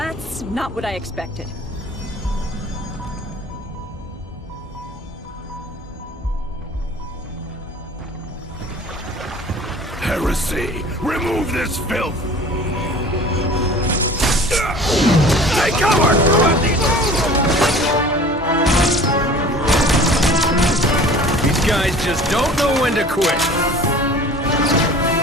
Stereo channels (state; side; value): normal; both; correlation 0.45